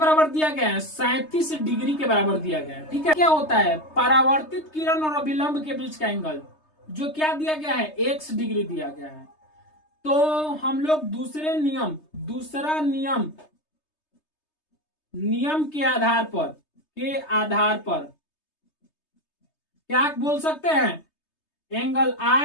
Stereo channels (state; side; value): late; right; 3.3 ms